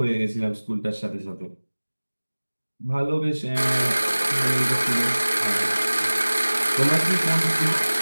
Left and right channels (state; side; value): inverted; both; correlation -1.00